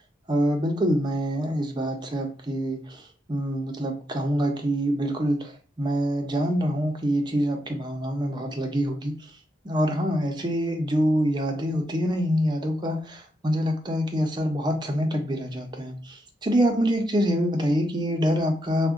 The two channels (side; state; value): both; normal; correlation 0.81